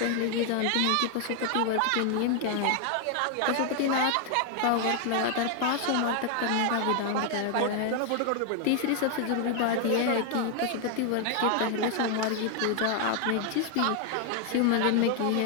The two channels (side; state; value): both; different; correlation 0.00